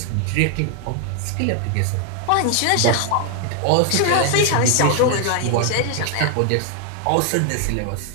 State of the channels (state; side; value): different; both; correlation 0.00